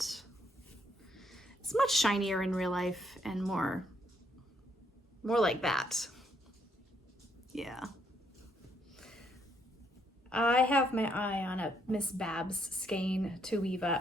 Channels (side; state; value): both; normal; correlation 0.72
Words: It's much shinier in real life and more like that. Yeah. I have my eye on a Miss Babs skein to weave